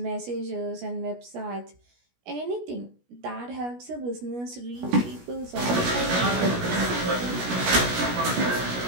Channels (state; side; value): late; left; 17 ms